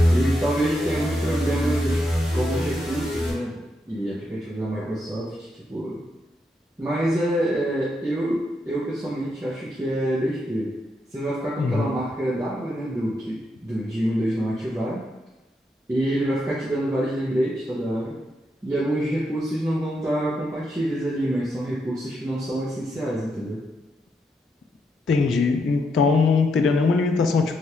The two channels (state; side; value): normal; both; correlation 0.81